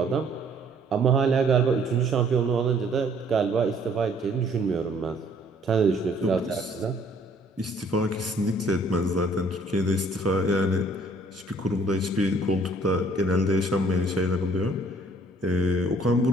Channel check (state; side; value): normal; both; correlation 0.60